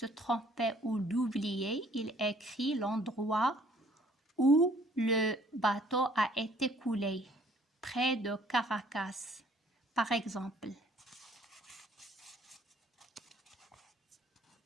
tromper ou d'oublier, il écrit l'endroit où le bateau a été coulé, près de Caracas, par exemple.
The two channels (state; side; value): normal; both; correlation 0.59